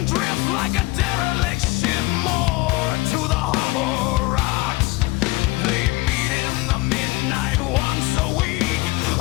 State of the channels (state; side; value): quieter; right; 21.9 dB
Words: drift like a derelict ship moored to the harbor rocks. They meet in the midnight once a week,